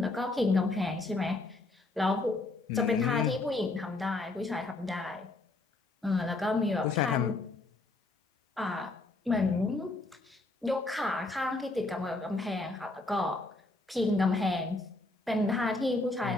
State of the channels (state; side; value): quieter; right; 3.1 dB